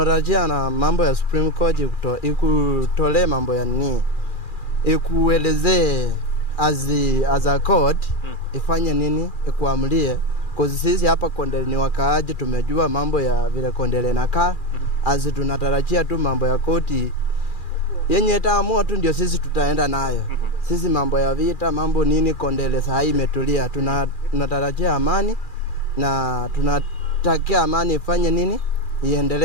na mambo ya Supreme Court ikutole mambo ya nini? Ikuelezee as a court ifanye nini, ikuamlie. Kwa sisi hapa Kondele ni wakaaji, tumejua mambo ya vile Kondele nakaa. Tunatarajia tu mambo ya koti yenye itaamua tu ndio sisi tutaenda nayo. Sisi mambo ya vita, mambo nini, Kondele saa hii imetulia. Tunatarajia amani na tunatakia amani ifanye nini,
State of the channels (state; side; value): late; right; 2.4 ms